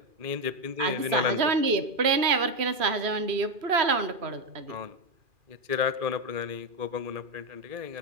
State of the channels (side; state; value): left; late; 2.4 ms